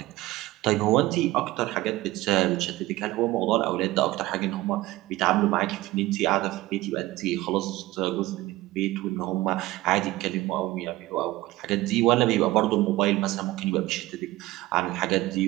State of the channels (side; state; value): left; quieter; 17.9 dB